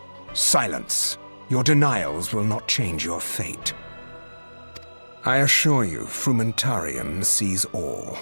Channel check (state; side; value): inverted; both; correlation -1.00